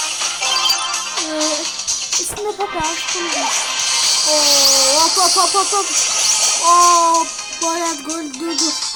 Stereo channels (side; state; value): both; identical; correlation 1.00